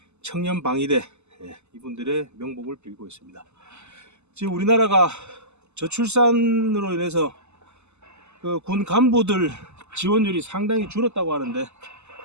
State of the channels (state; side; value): late; left; 0.82 ms